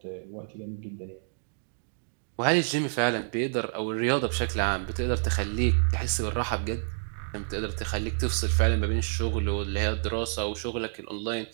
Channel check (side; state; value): left; silent; digital silence